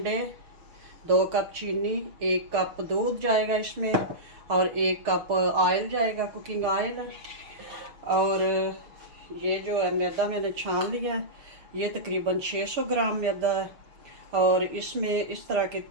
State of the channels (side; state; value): left; late; 6.4 ms